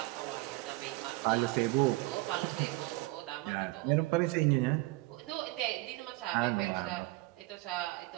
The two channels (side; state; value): left; quieter; 21.6 dB